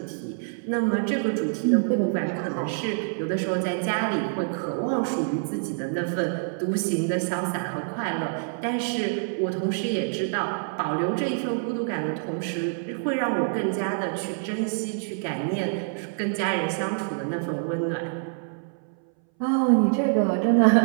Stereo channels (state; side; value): silent; left; 60 dB below the other